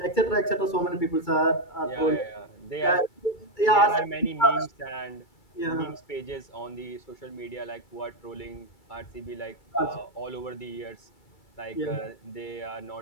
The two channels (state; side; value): late; right; 2.3 ms